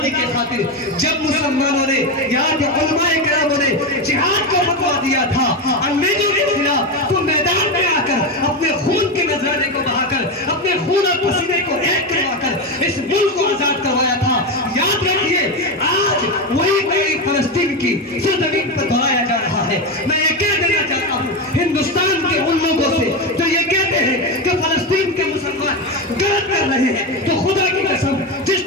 کے خاطر جب مسلمانوں نے، یہاں کے علماء کراموں نے جہاد کو فتویٰ دیا تھا انگریزوں کے خلاف، تو میدان میں آ کر اپنے خون کے نذرانے کو بہا کر، اپنے خون اور پسینے کو ایک کروا کر اس ملک کو آزاد کروایا تھا۔ یاد رکھیے، آج وہی فلسطین کی سرزمین پر دہرایا جا رہا ہے۔ میں یہ کہہ دینا چاہتا ہوں ہندوستان کے ان لوگوں سے جو یہ کہتے ہیں کہ فلسطین کے مسلمان غلط کر رہے ہیں، تو خدا کی قسم جس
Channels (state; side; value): normal; both; correlation 0.14